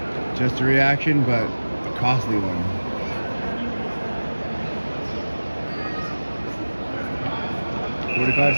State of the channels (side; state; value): both; inverted; correlation -1.00